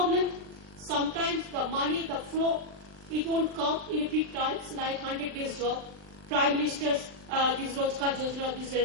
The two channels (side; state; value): left; late; 39 ms